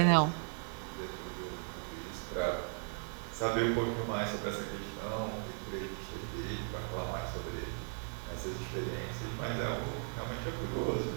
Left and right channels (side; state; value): left; silent; 53 dB below the other